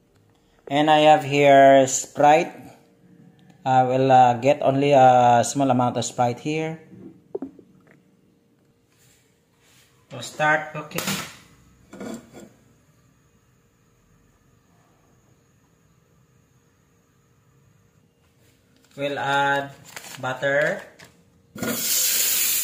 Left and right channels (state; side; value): identical; both; correlation 1.00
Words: and I have here Sprite. I will get only a small amount of Sprite here to start cooking. We'll add butter.